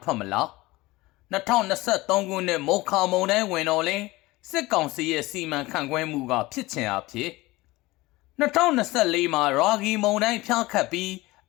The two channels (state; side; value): quieter; right; 20.4 dB